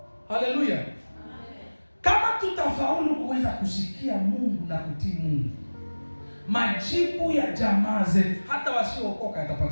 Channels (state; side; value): inverted; both; correlation -1.00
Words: Haleluya. Kama tutafaulu kuweza kusikia Mungu na kutii Mungu, majibu ya jamaa zetu hata wasiookoka